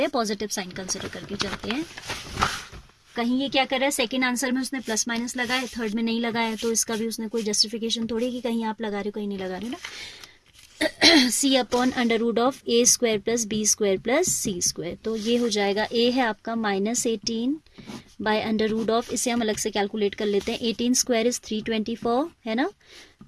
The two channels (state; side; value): identical; both; correlation 1.00